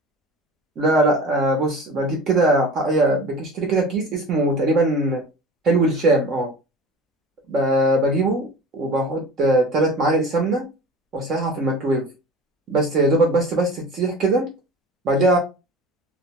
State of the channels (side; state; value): both; normal; correlation 0.38